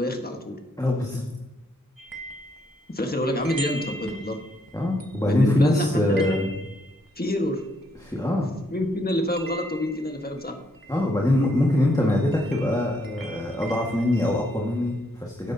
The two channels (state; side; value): normal; both; correlation 0.74